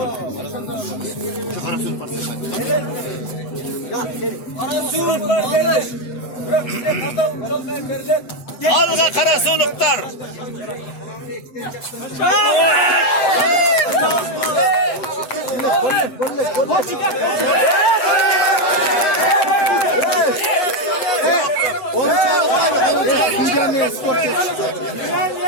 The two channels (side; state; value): right; late; 8.0 ms